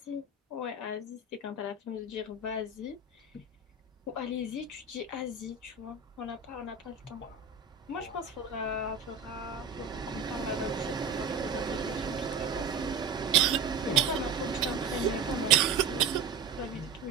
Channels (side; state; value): left; quieter; 4.8 dB